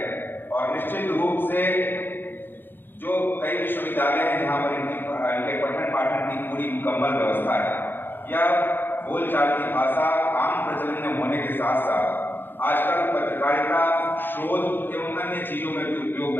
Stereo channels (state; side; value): late; right; 0.098 ms